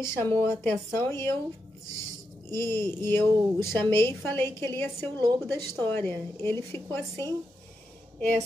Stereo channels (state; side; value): normal; both; correlation 0.85